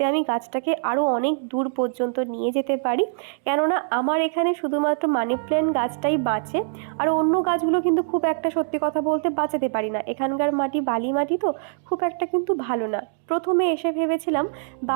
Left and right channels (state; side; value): silent; left; digital silence